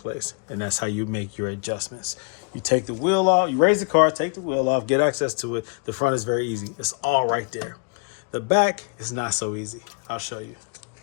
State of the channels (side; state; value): right; quieter; 34.8 dB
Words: And that's how you make your adjustments. You take the wheel off, you raise the car, take the wheel off, get access to it. The front is very easy. It's all right there. The back is not so easy. I'll show you.